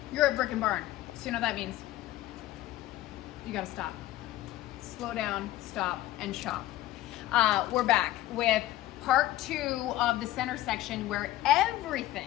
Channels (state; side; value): quieter; right; 15.1 dB